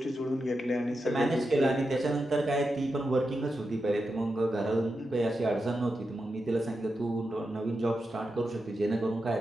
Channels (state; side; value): normal; both; correlation 0.88